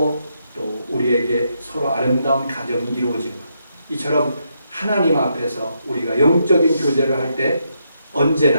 또 우리에게 서로 아름다운 가정이 이루어지는 것. 이처럼 하나님 앞에서 우리가 영적인 교제를 할 때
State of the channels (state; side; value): inverted; both; correlation -0.79